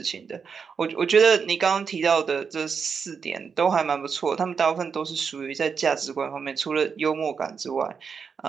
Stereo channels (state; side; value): quieter; left; 6.0 dB